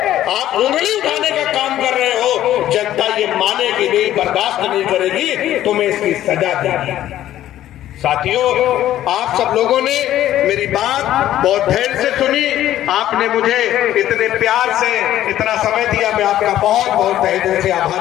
आप उंगली उठाने का काम कर रहे हो। जनता ये मानेगी नहीं, बर्दाश्त नहीं करेगी, तुम्हें इसकी सजा देगी। साथियों, आप सब लोगों ने मेरी बात बहुत धैर्य से सुनी, आपने मुझे इतने प्यार से इतना समय दिया, मैं आपका बहुत बहुत तहे दिल से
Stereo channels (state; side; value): quieter; right; 12.8 dB